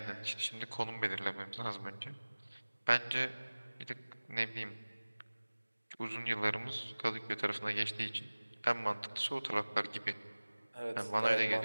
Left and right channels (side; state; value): both; inverted; correlation -1.00